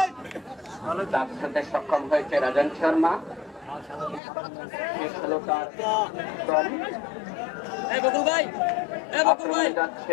সক্ষম হয়েছে রাজন শর্মা। শেষ হলো তার দল।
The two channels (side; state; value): right; drops out; at 4.2 s